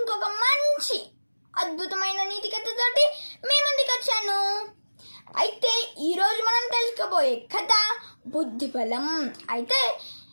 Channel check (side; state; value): both; inverted; correlation -1.00